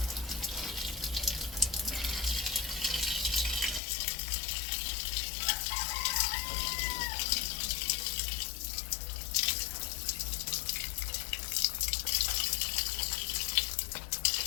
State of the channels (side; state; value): right; drops out; at 3.8 s